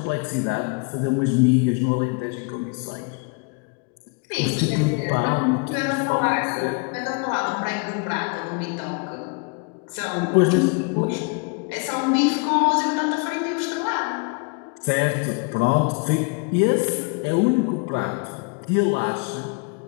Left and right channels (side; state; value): right; quieter; 32.3 dB